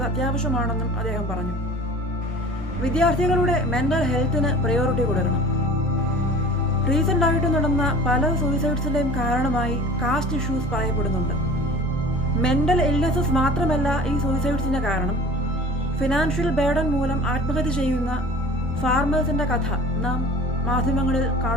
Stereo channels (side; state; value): both; normal; correlation 0.42